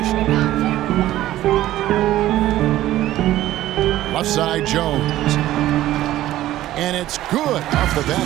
Left side, Jones. And it's good off the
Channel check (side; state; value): left; quieter; 14.5 dB